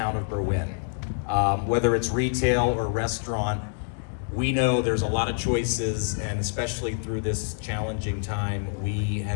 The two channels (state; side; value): silent; right; digital silence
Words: of Berwyn. Whether it's retail or restaurant, we know there's a lot of choices, and especially through this challenging time, we